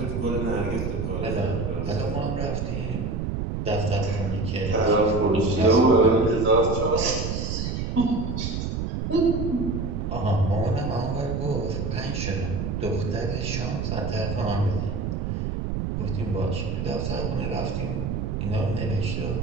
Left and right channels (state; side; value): noise; right; rumble, 2 dB below the sound